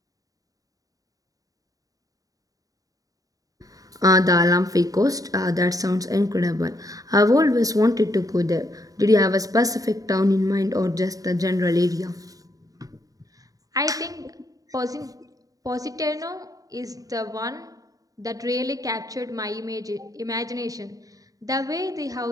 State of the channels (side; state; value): left; late; 0.17 ms